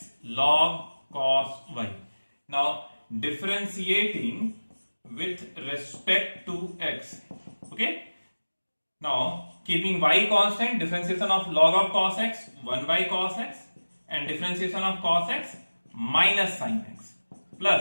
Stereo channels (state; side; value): inverted; both; correlation -1.00